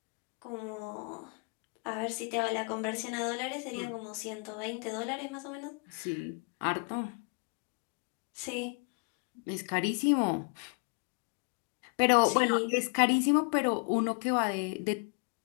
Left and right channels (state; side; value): quieter; right; 35.5 dB